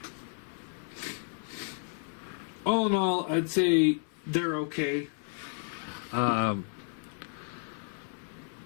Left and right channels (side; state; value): right; silent; 56 dB below the other